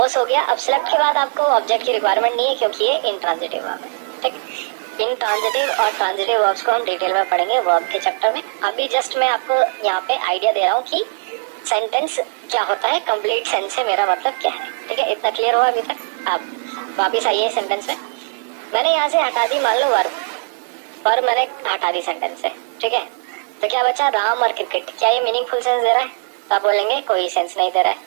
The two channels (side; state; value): left; silent; digital silence